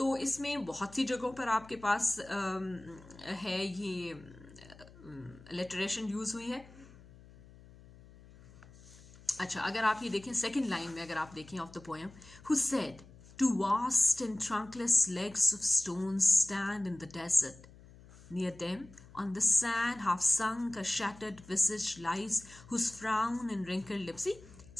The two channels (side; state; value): left; noise; hum, 21 dB below the sound